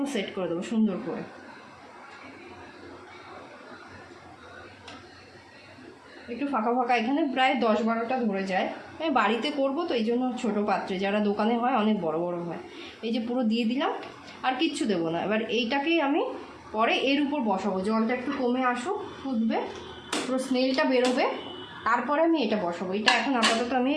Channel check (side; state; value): both; identical; correlation 1.00